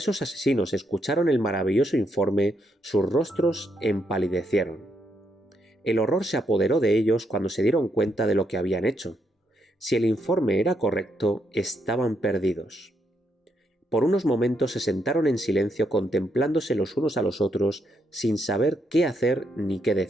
asesinos escucharon el maravilloso informe, sus rostros empalidecieron. El horror se apoderó de ellos cuando se dieron cuenta de lo que habían hecho. Si el informe era correcto, estaban perdidos. Por unos momentos se sentaron en silencio contemplándose los unos a los otros sin saber qué hacer ni qué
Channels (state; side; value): normal; both; correlation 0.78